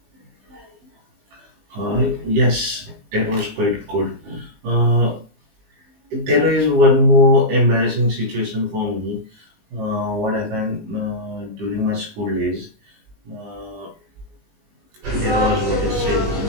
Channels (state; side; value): late; left; 19 ms